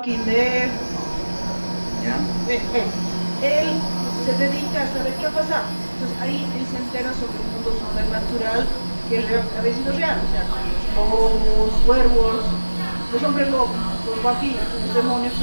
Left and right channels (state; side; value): inverted; both; correlation -1.00